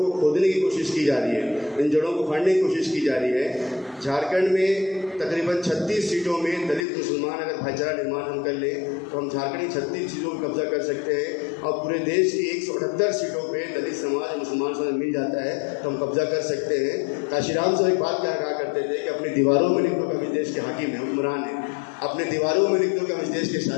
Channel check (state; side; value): drops out; right; at 6.9 s